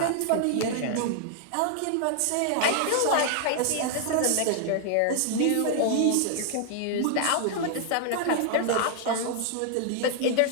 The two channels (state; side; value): different; both; correlation 0.00